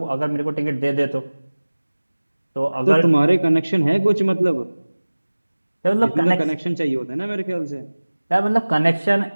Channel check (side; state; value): both; inverted; correlation -1.00